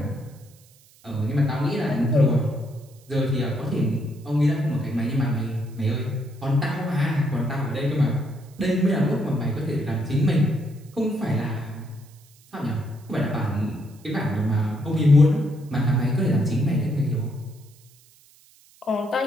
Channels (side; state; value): right; noise; hiss, 28 dB below the sound